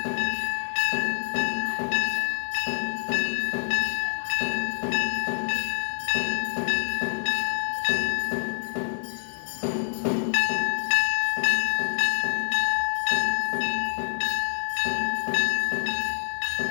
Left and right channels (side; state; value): right; silent; 61 dB below the other